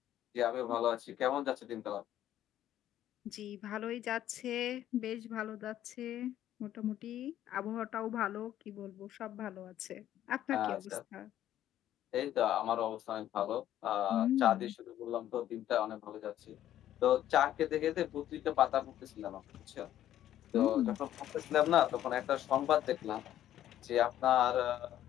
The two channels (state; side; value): quieter; right; 12.1 dB